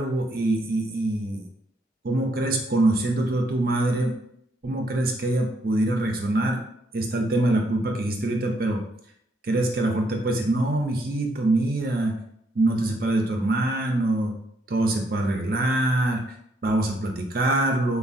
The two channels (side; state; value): both; normal; correlation 0.73